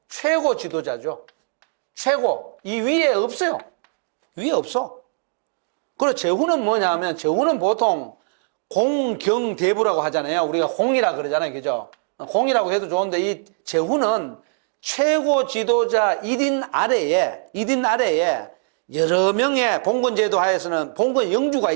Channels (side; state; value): left; silent; 64 dB below the other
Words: 최고 지도자죠. 최고. 이 위에 없어요. 위에 없어. 그리고 제후는 뭐냐면 제후는 보통 공경대부라고 하잖아요. 우리가 공이라 그러잖아요. 그죠? 공이라고 해도 좋은데 이 제후는 최고 지도자 1인 아래에 여러 명의 봉건제도 하에서는 봉건 영주가